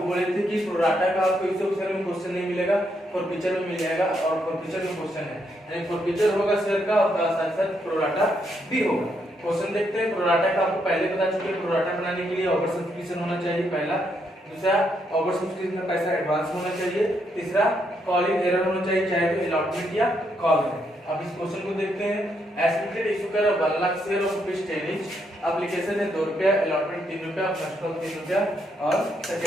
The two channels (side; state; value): both; normal; correlation 0.77